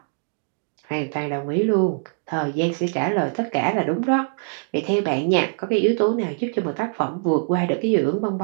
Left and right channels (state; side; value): silent; left; 63 dB below the other